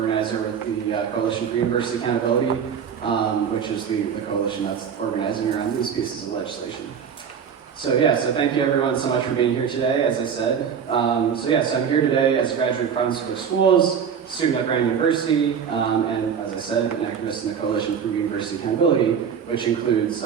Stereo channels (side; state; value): left; quieter; 7.3 dB